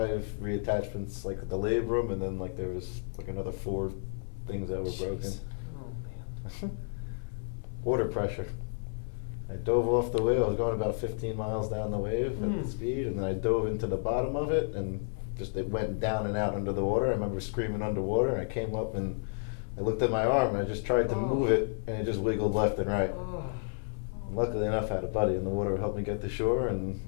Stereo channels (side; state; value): right; silent; 57 dB below the other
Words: reattachments, like the labrum, and then like there was like another 4 things that were broken. Jeez. Oh man. Water pressure. I dove off the wave. I was going about 15 miles down the wave at the speed, and then I dove into the bottom of it, and just it went down and out under the water. I remember screaming underwater, and I came up and I looked at my arm, and I just tried to move it, and it just wiggled left and right. Oh. Luckily enough, I had a buddy in the water who helped me get to shore, and